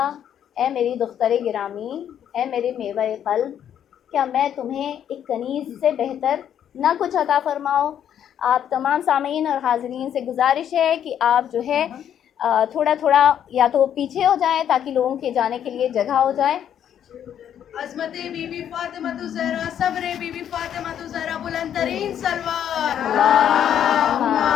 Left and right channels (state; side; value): quieter; right; 9.6 dB